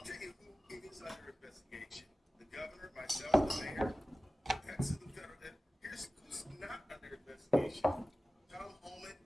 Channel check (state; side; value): normal; both; correlation 0.96